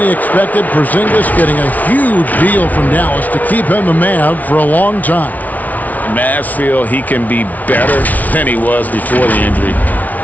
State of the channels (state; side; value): late; right; 0.074 ms